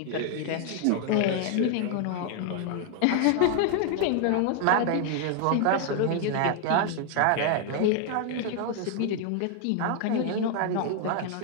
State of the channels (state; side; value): different; both; correlation 0.00